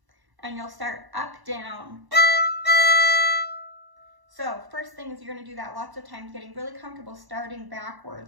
And you'll start up, down. So first thing is you're going to do that lots of times, getting really comfortable starting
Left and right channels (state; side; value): late; left; 1.1 ms